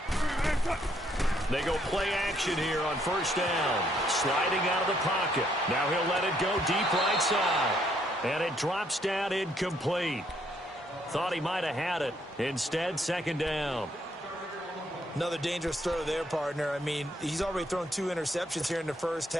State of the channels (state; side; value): normal; both; correlation 0.70